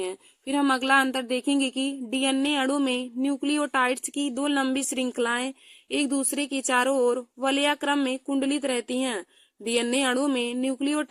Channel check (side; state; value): both; identical; correlation 1.00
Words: फिर हम अगला अंतर देखेंगे कि डीएनए अणु में न्यूक्लियोटाइड्स की 2 लंबी श्रृंखलाएं एक दूसरे के चारों ओर वलयाक्रम में कुंडलित रहती हैं। डीएनए अणु में